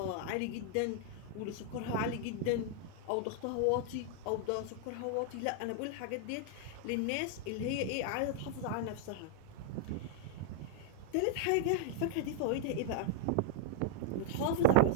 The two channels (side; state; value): both; different; correlation -0.01